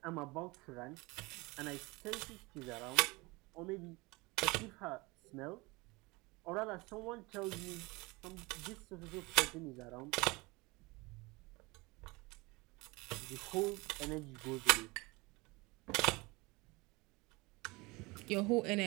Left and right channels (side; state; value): left; quieter; 24.3 dB